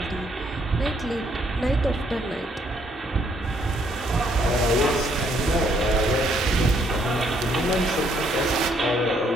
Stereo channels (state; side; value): normal; both; correlation 0.69